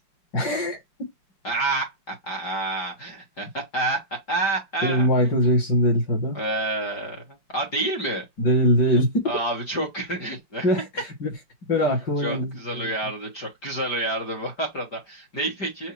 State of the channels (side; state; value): right; late; 5.0 ms